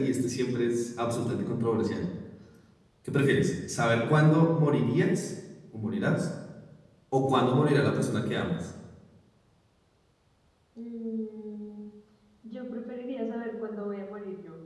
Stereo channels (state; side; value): identical; both; correlation 1.00